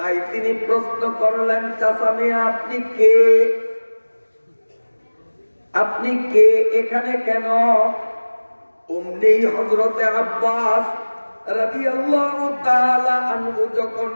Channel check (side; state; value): both; inverted; correlation -1.00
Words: তিনি প্রশ্ন করলেন, চাচা মিয়া আপনি কে? আপনি কে, এখানে কেন? অমনি হযরতে আব্বাস রাদিয়াল্লাহু তাআলা আনহু যখন